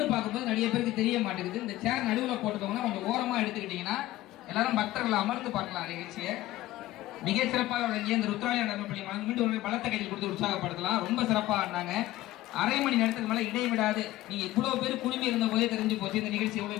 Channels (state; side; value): quieter; right; 16.1 dB